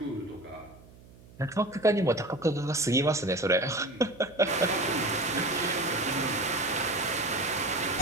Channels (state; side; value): noise; right; hum, 23 dB below the sound